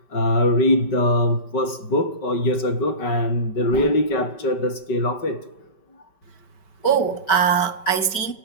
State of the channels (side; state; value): right; late; 5.2 ms